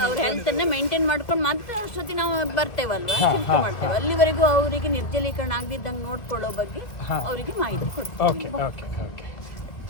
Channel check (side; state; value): right; late; 2.2 ms